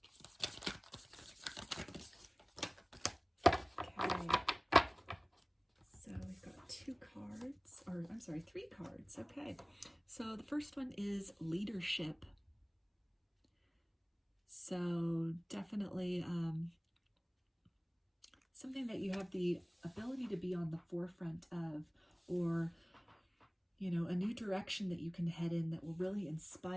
Three cards. Okay, so the first one is leadership. So definitely something that you have the ability to be on the forefront of, or, you know, a new direction that you can head in that will really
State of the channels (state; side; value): identical; both; correlation 1.00